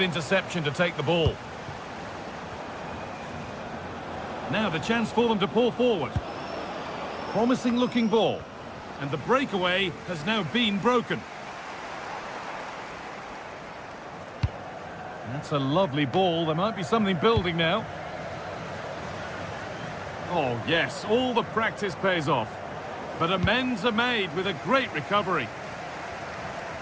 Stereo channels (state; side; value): identical; both; correlation 1.00